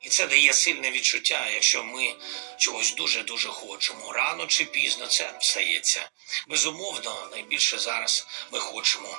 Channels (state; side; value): silent; left; digital silence